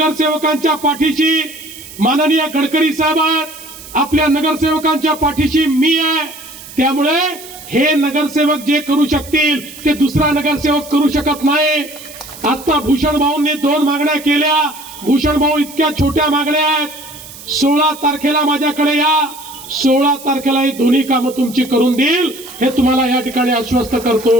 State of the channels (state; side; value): noise; right; hiss, 16 dB below the sound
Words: पाठीशी माननीय गडकरी साहेब आहेत, आपल्या नगरसेवकांच्या पाठीशी मी आहे. त्यामुळे हे नगरसेवक जे करू शकतील ते दुसरा नगरसेवक करू शकत नाही. आता भूषण भाऊंनी 2 मागण्या केल्या. भूषण भाऊ इतक्या छोट्या मागण्या आहेत. 16 तारखेला माझ्याकडे या, 16 तारखेला ही दोन्ही कामं तुमची करून देईल हे तुम्हाला या ठिकाणी आश्वस्त करतो.